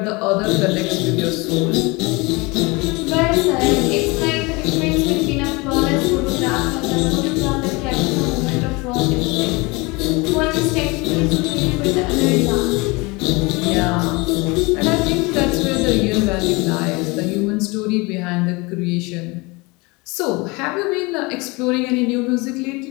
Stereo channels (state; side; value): quieter; right; 25.8 dB